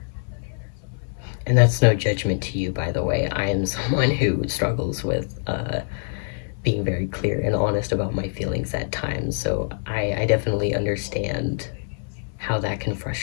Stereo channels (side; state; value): right; silent; digital silence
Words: and that's no judgment to you, by the way. I am someone who struggles with being very clear and honest about my feelings at times, so I definitely understand how that can